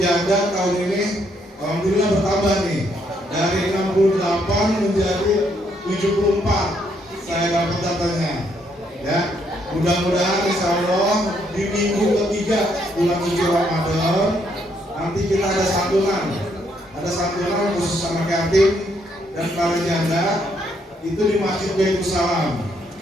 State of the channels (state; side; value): normal; both; correlation 0.72